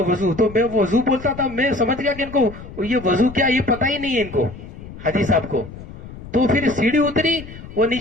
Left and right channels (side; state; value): left; noise; rumble, 14 dB below the sound